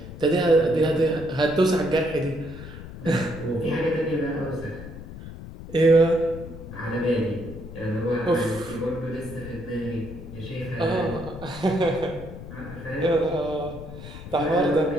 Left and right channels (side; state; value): left; noise; rumble, 12 dB below the sound